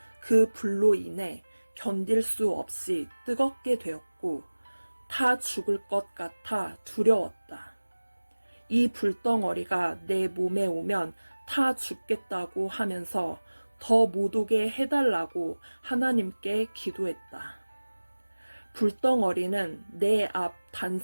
그 불로 인해 견딜 수 없이 뜨겁게 되었고 타 죽을 것 같아 두려웠다. 이 불덩어리가 내 몸에 오면 타 죽겠다고 하면서 더 못 오게 해달라고 하나님께 기도했다. 불덩어리는 내 앞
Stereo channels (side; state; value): both; inverted; correlation -1.00